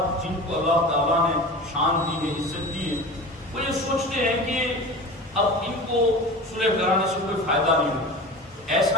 جن کو اللہ تعالیٰ نے شان دی ہے، عزت دی ہے، وہ یہ سوچتے ہیں کہ اب ان کو صلح کرانے سے کوئی فائدہ نہیں ہوگا۔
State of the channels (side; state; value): both; normal; correlation 0.33